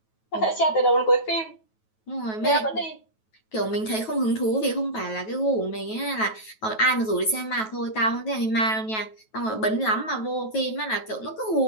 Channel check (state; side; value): late; right; 9.2 ms